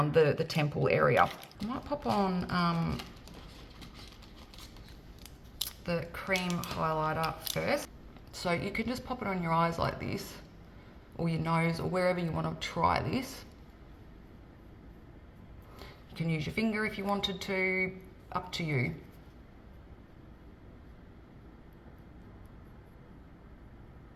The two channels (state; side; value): identical; both; correlation 1.00